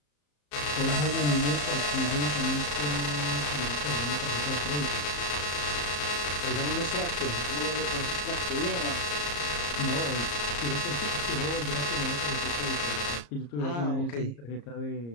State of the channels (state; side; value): late; right; 34 ms